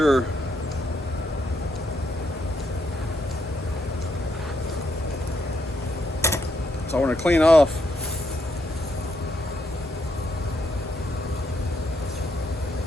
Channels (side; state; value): both; normal; correlation 0.77